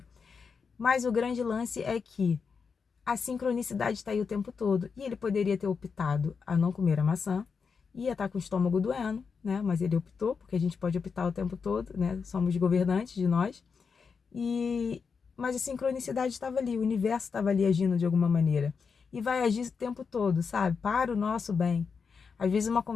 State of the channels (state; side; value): quieter; right; 5.6 dB